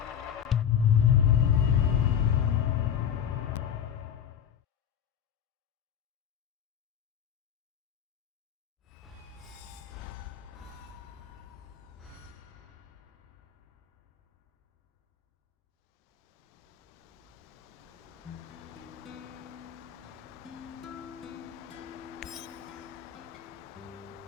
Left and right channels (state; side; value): quieter; right; 9.0 dB